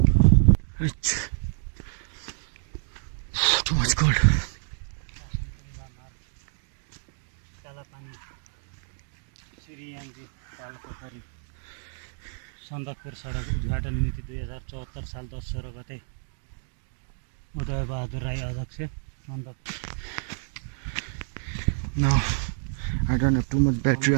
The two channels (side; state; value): left; silent; 59 dB below the other